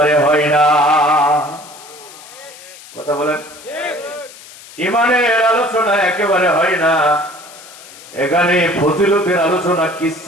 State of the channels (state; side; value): noise; left; hiss, 19 dB below the sound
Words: হয় না। কথা বলেন, ইমানের আলোচনা একেবারে হয় না। এখানে ফজিলতের আলোচনা,